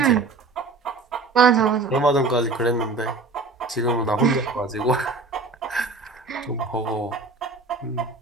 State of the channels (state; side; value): quieter; left; 3.7 dB